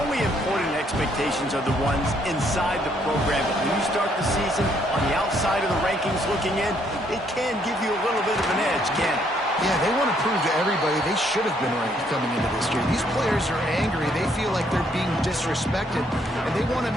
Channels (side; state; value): both; normal; correlation 0.69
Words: important expectations are the ones inside the program. But when you start the season on the outside of the rankings looking in, it can give you a little bit of an edge, can't it? Yeah, they want to prove to everybody they should have been ranked coming into this year. These players are angry. They feel like they're being disrespected, and they want to